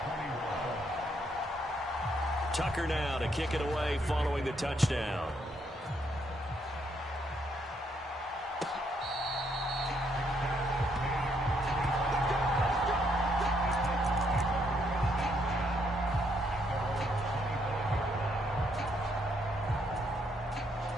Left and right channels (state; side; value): normal; both; correlation 0.73